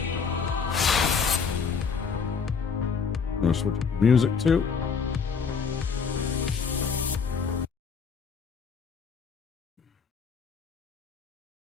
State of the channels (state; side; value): quieter; right; 5.7 dB